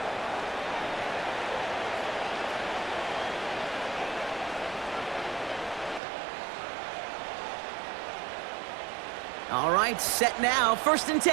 All right, set now, 1st and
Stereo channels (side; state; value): left; drops out; at 6.0 s